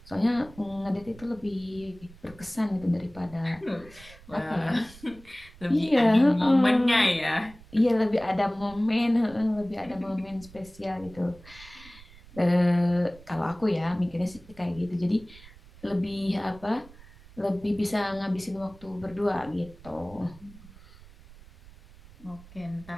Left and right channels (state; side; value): noise; right; rumble, 21 dB below the sound